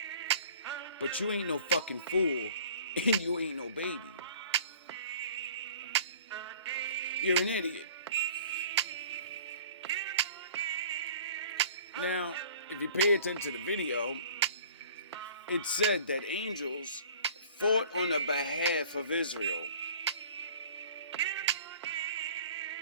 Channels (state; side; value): inverted; both; correlation -0.49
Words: But you ain't no fucking fool, and you ain't no baby. You're an idiot. Now, if you pay attention to the video, it said that angels fought on the behalf of Israel